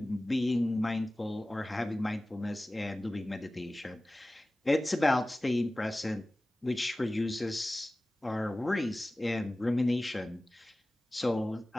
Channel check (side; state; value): both; normal; correlation 0.97